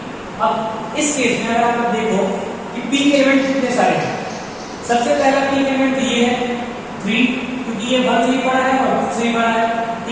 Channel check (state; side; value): identical; both; correlation 1.00